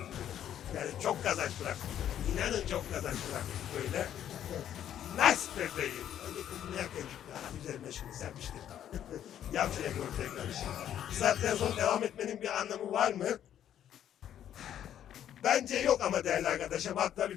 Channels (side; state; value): right; quieter; 10.5 dB